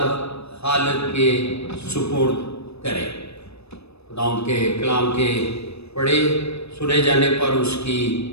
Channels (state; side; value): late; right; 0.79 ms